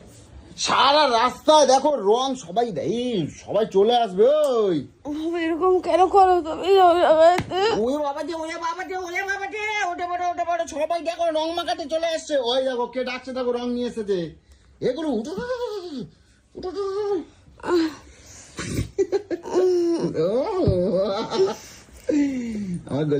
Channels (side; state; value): both; identical; correlation 1.00